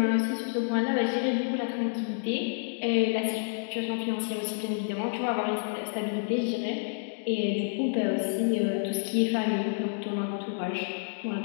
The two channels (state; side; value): silent; right; digital silence